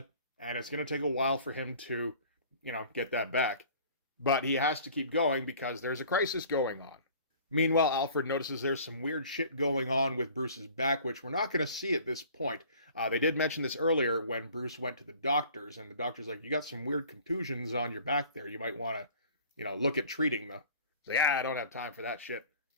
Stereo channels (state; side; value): inverted; both; correlation -0.48